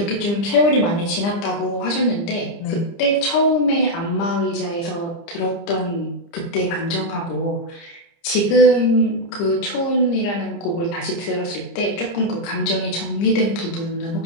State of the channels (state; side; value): late; right; 30 ms